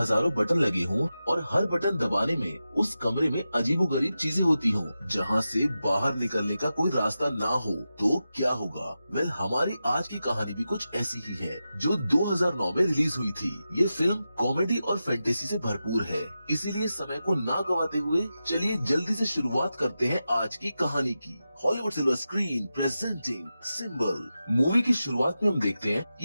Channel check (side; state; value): both; inverted; correlation -0.91